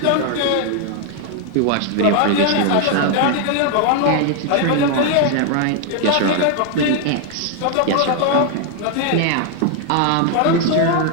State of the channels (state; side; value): different; both; correlation 0.00